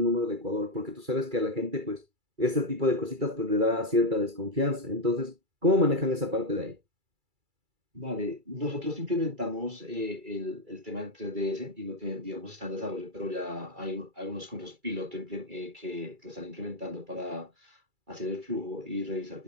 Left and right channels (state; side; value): late; left; 2.3 ms